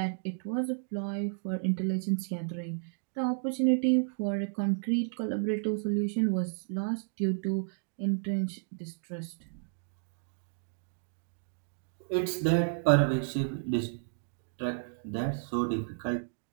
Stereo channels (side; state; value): left; silent; digital silence